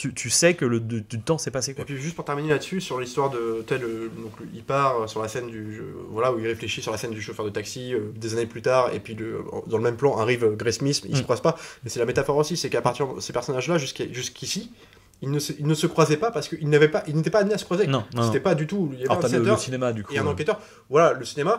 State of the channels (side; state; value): both; identical; correlation 1.00